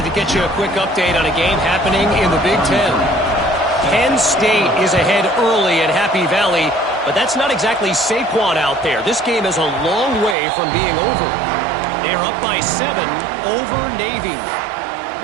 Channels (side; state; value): left; drops out; at 10.4 s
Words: to get you a quick update on a game happening in the Big Ten. Penn State is ahead early at Happy Valley, but that's not exactly Saquon out there. This game is a long way from being over. They're up by 7 over Navy.